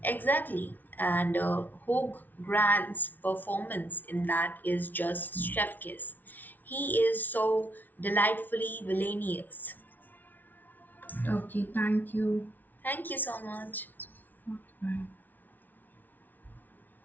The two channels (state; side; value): late; right; 0.083 ms